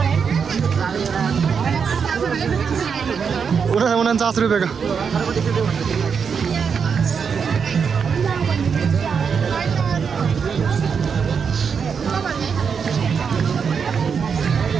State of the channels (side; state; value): left; quieter; 6.3 dB